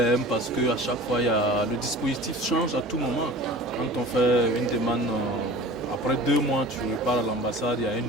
parce qu'à chaque fois, le dispositif change à tout moment. Quand on fait une demande, après 2 mois, tu repars à l'ambassade, il y a un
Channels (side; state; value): both; normal; correlation 0.41